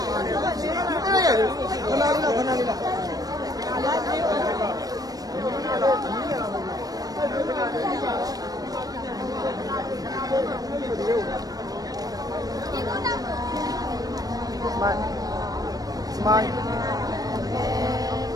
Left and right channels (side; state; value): left; late; 0.18 ms